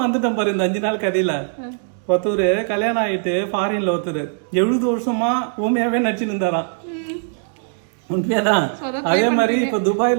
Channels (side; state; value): left; silent; digital silence